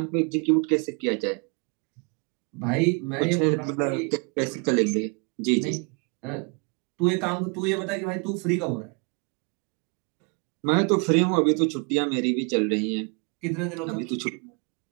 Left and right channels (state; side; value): quieter; left; 34.7 dB